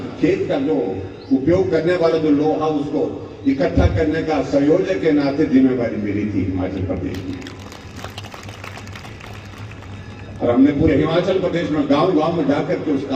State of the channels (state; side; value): identical; both; correlation 1.00